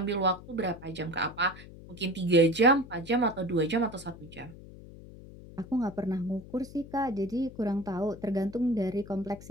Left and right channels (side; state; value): left; noise; hum, 17 dB below the sound